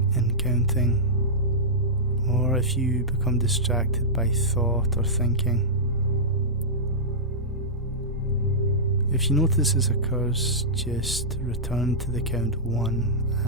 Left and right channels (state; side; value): normal; both; correlation -0.13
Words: in counting, or if you become distracted by thought or thinking. If you notice this occurs, just return to the count 1